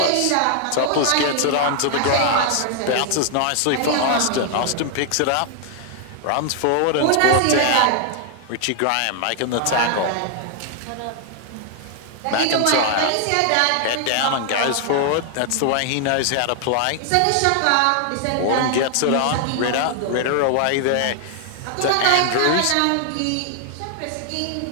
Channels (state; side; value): different; both; correlation 0.00